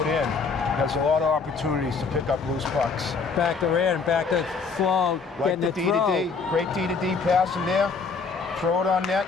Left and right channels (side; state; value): right; quieter; 4.8 dB